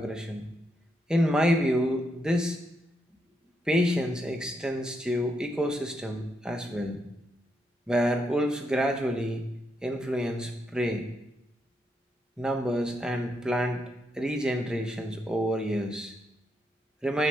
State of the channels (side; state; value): both; normal; correlation 0.80